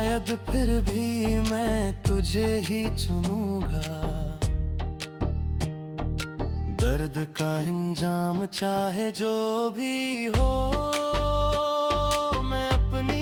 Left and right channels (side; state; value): both; identical; correlation 1.00